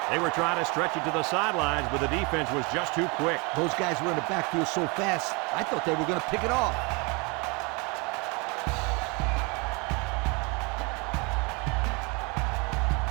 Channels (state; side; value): quieter; left; 29.4 dB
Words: They were trying to stretch it to the sidelines, but the defense was just too quick. Those guys were in the backfield so fast, I thought they were going to pick it off.